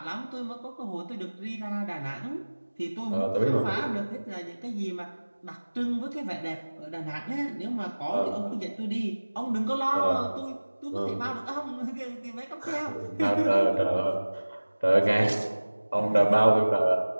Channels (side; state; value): both; inverted; correlation -1.00